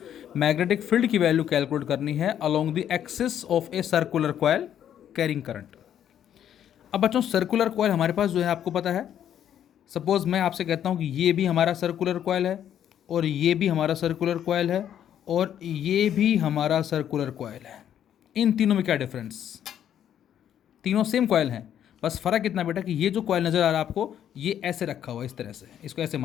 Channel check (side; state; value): right; quieter; 10.0 dB